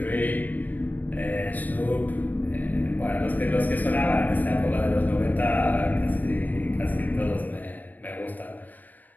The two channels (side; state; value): right; late; 0.083 ms